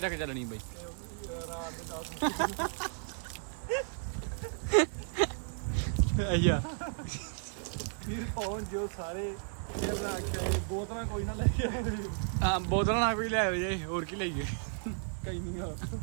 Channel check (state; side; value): silent; left; digital silence